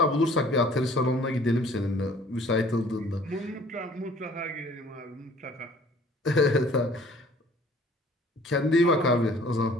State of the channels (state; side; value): normal; both; correlation 0.54